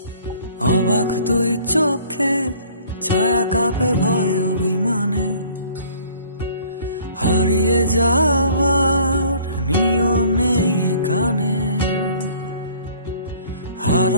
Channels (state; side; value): inverted; both; correlation -0.54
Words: অবাক তুই চোখে, ছায়া কাঁপে ভয় অভিমানে। হারিয়ে যাওয়ার নিয়ম নেই এখানে।